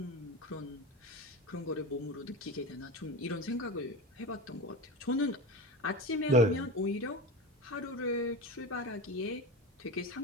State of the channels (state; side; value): normal; both; correlation 0.26